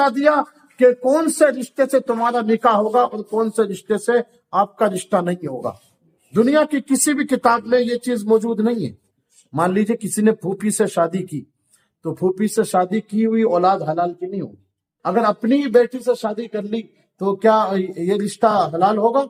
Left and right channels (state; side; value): identical; both; correlation 1.00